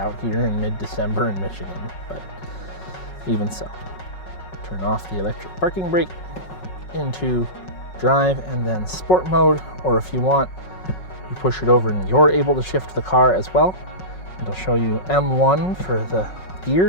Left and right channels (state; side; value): late; right; 5.4 ms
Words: here in mid-December in Michigan, but even so. Turn off the electric parking brake into drive and then sport mode, or if you want, you push it over and you're able to shift the car as well. It'll show you M1 for the